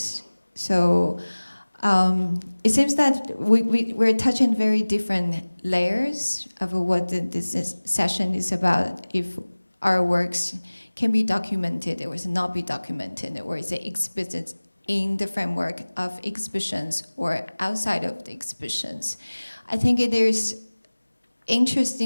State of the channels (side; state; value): both; inverted; correlation -1.00